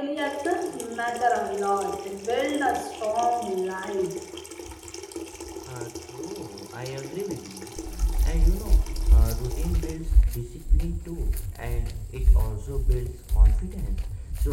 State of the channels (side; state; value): both; identical; correlation 1.00